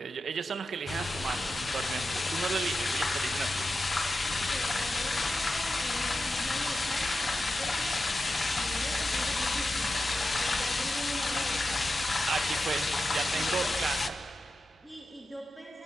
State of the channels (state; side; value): normal; both; correlation 0.91